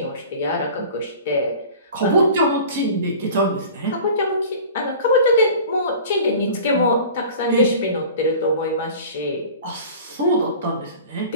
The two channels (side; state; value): both; inverted; correlation -0.41